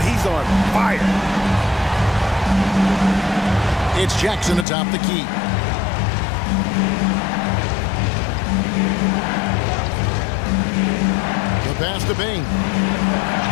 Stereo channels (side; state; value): right; drops out; at 4.7 s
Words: he's on fire. It's Jackson atop the key. The pass to Bain.